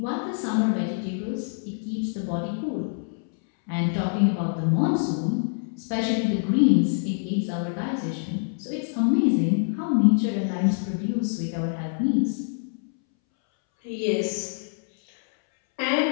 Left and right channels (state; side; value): silent; right; 61 dB below the other